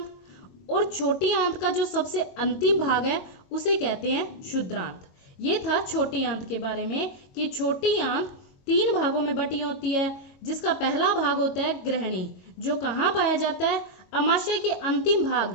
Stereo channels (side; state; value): right; late; 22 ms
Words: और छोटी आंत का जो सबसे अंतिम भाग है उसे कहते हैं शुद्रांत। ये था छोटी आंत के बारे में कि छोटी आंत 3 भागों में बटी होती है, जिसका पहला भाग होता है ग्रहणी, जो कहाँ पाया जाता है, अमाशय के अंतिम